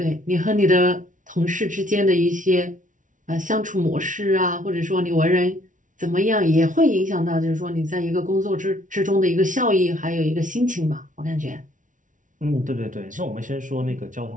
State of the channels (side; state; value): left; late; 0.37 ms